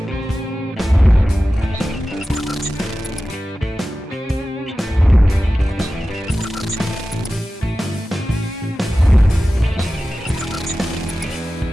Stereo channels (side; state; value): both; normal; correlation 0.94